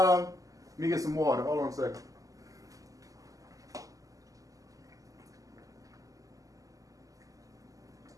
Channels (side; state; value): left; late; 0.17 ms